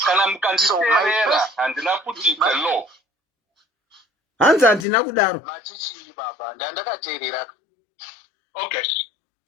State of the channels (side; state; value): right; drops out; at 4.9 s